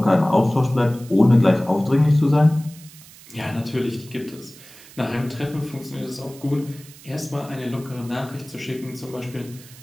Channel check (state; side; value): noise; right; hiss, 21 dB below the sound